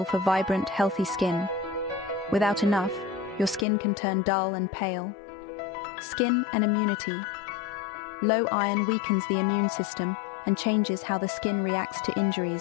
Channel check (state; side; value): drops out; right; at 3.7 s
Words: for vibrant, healthy skin. Without enough, your skin can turn dull and pale. Skin and immunity. Low iron weakens the immune system and changes how the skin reacts to